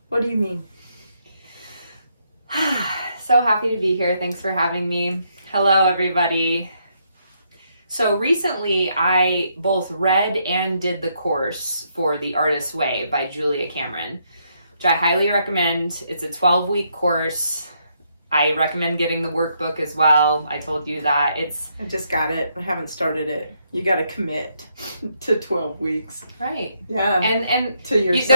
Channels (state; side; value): inverted; both; correlation -0.75